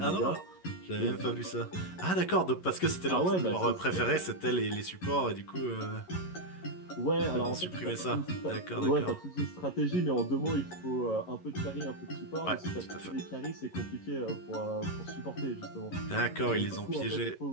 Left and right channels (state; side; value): late; right; 11 ms